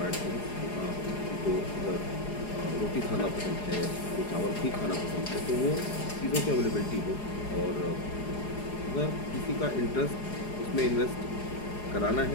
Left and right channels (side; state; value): right; late; 4.8 ms